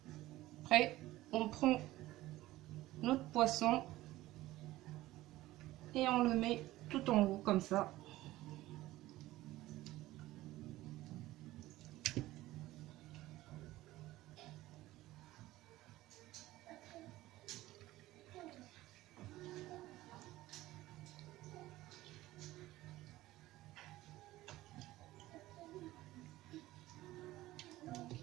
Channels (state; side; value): quieter; left; 16.8 dB